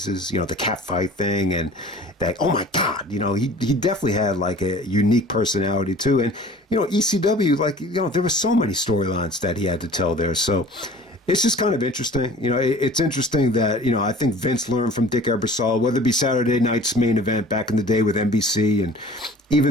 you know, the cat fight thing and that, oh my God, you know, he definitely had like a unique personality too. And, you know, ECW, like, you know, there were so many storylines that he had to tell there. So it's just kind of interesting. You know, it's interesting that, you know, I think Vince learned from Dick Ebersol, whether it be Saturday night's main event back in the day with NBC and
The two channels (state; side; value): normal; both; correlation 0.46